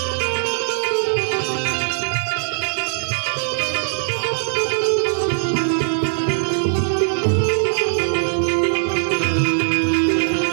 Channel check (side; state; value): left; silent; 66 dB below the other